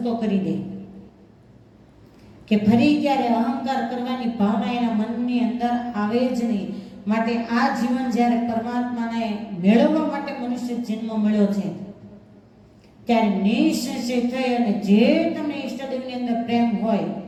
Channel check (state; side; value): identical; both; correlation 1.00